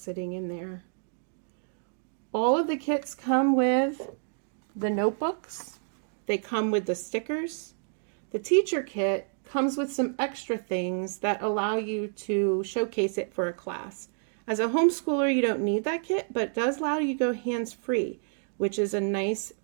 sitting in there. All of the kits come with the notebooks. They come with the stickers. The teacher kit comes with some extra things that allow you to showcase it for a class. As a homeschooler, you don't need that kit, but it does allow you to go hands-free, which is a nice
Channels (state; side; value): silent; left; 59 dB below the other